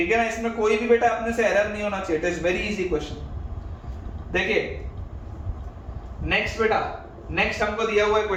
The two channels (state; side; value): identical; both; correlation 1.00